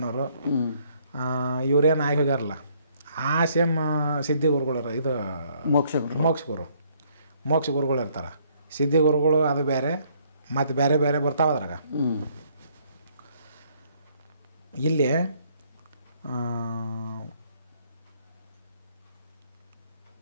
ಇವ್ರೇನು ಆಗಿ ಹೋಗ್ಯಾರಲ್ಲ, ಆ ಸೇಮ್ ಸಿದ್ಧಿ ಗುರುಗಳು. ಇದು ಮೋಕ್ಷ ಗುರುಗಳು ಇರ್ತಾರೆ. ಸಿದ್ಧಿ ಗುರುಗಳು ಅದು ಬೇರೆ, ಮತ್ತು ಬೇರೆ ಬೇರೆ ಬರ್ತಾವೆ ಅದ್ರಾಗ. ಇಲ್ಲಿ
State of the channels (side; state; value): both; inverted; correlation -0.66